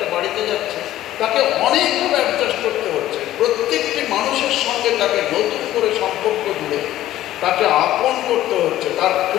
বাড়িতে যাচ্ছে, তাকে অনেকভাবে অ্যাডজাস্ট করতে হচ্ছে। প্রত্যেকটি মানুষের সঙ্গে তাকে নতুন করে সম্পর্ক জুড়ে তাকে আপন করতে হচ্ছে। তার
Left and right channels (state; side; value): quieter; right; 13.9 dB